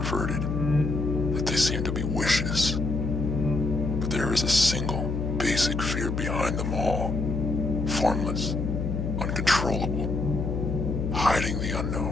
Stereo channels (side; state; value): left; noise; hum, 2 dB below the sound